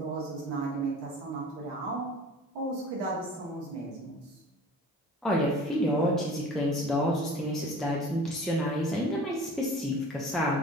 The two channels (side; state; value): both; normal; correlation 0.43